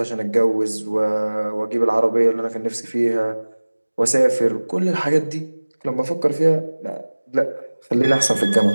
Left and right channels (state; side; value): inverted; both; correlation -1.00